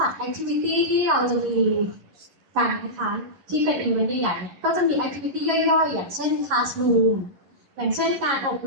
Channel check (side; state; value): left; late; 11 ms